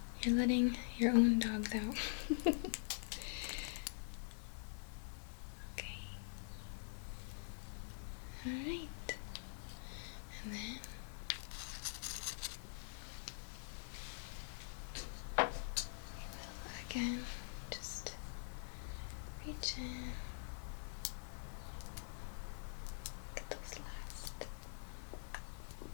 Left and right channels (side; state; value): right; silent; digital silence